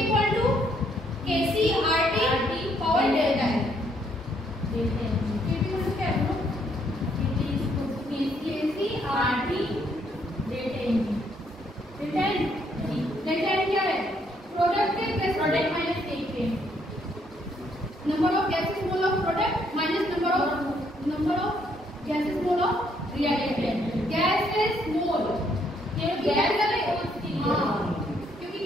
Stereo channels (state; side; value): normal; both; correlation 0.70